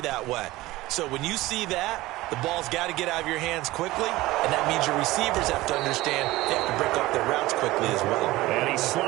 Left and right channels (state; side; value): quieter; left; 18.4 dB